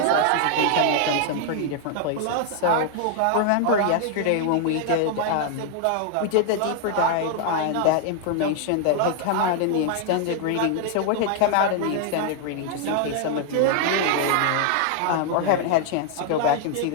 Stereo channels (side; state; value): both; different; correlation 0.00